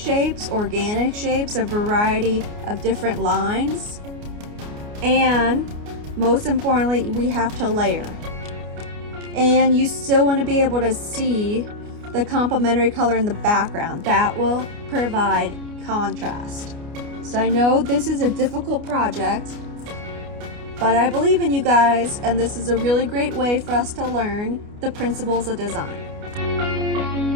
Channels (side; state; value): left; late; 29 ms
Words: organic shapes, a variety of different lines, and most importantly, we have to layer. And you still want to be able to see the complementary color in the background. That will provide contrast. So I know this is a difficult project, but I believe in you guys, and this is a really great way for us to learn the principles of design.